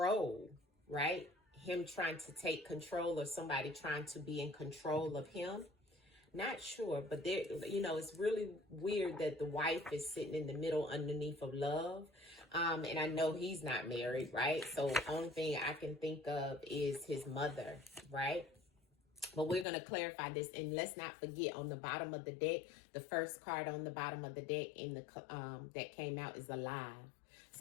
right? Him trying to take control or somebody trying to be in control of him. Not sure, but there, you know, it's really weird that the wife is sitting in the middle underneath of love. And I know he's not married, right? So only thing I can think of is his mother, right? But we're going to clarify this, and let's not forget, on the bottom of the deck, the first card on the bottom of the deck in the that came out is alive.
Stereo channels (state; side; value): drops out; right; at 19.7 s